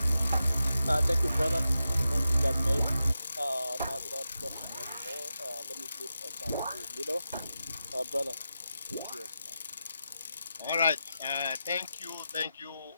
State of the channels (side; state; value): both; inverted; correlation -0.90